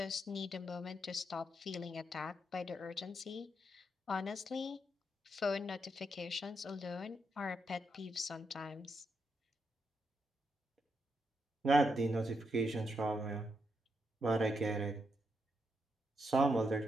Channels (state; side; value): normal; both; correlation 0.81